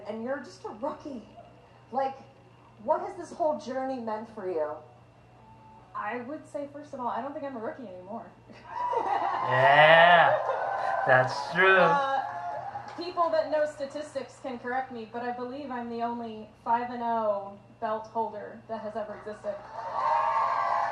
and you're just a rookie. Like, what has this whole journey meant for you? I would say, first of all, I don't think I'm a rookie anymore. Yeah, that's true. People that know statistics can correct me, but I believe I'm the only 5-0 belt holder that has ever existed.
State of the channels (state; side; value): identical; both; correlation 1.00